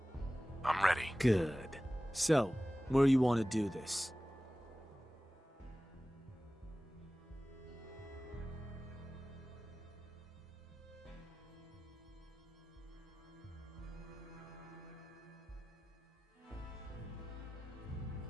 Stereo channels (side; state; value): both; normal; correlation 0.96